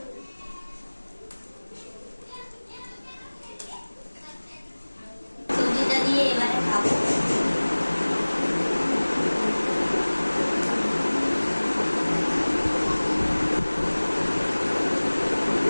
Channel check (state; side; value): inverted; both; correlation -1.00